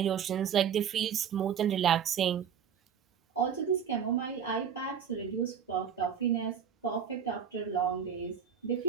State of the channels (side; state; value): left; quieter; 8.0 dB